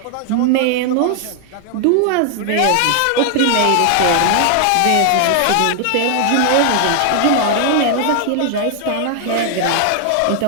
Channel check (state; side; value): different; both; correlation 0.00